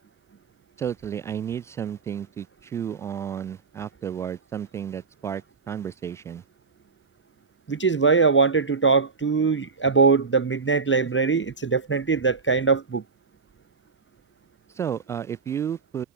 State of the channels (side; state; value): left; quieter; 4.8 dB